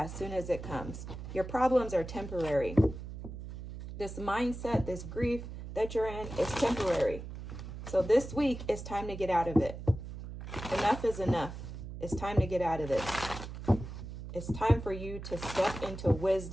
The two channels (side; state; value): right; noise; hum, 10 dB below the sound